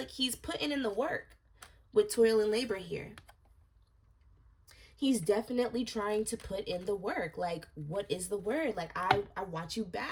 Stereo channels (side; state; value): both; identical; correlation 1.00